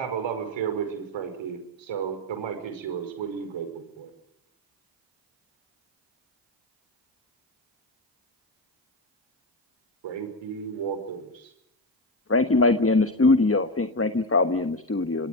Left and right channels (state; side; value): normal; both; correlation 0.16